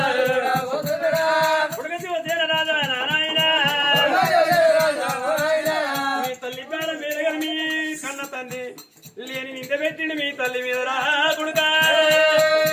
లేని నింద పెట్టిండి మీ తల్లి మీద రా కొడుకా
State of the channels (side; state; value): both; identical; correlation 1.00